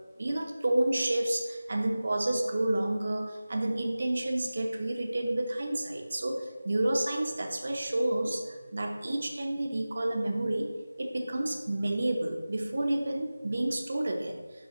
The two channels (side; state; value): both; inverted; correlation -0.97